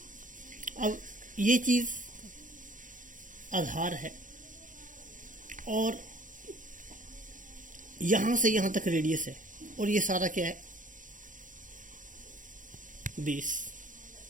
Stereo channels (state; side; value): late; left; 0.38 ms